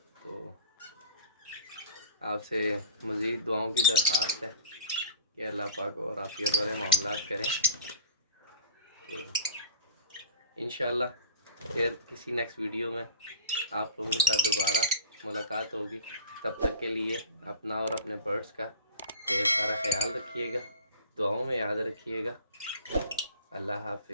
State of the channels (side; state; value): both; inverted; correlation -0.40